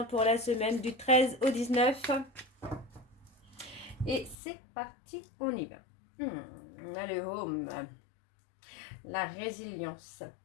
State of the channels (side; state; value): right; drops out; at 4.4 s